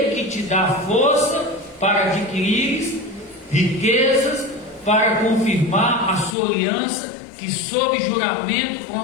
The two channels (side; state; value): right; drops out; at 6.4 s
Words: que te dá força para adquirires riquezas, para confirmar a sua aliança, que sob juramento